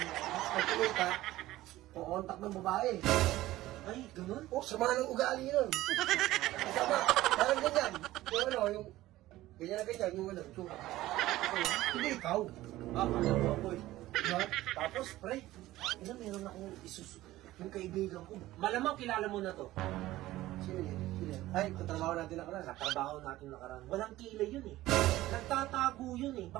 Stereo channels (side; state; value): left; quieter; 16.2 dB